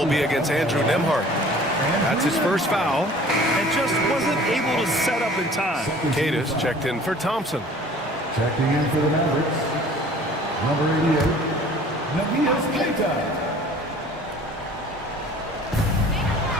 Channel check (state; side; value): normal; both; correlation 0.49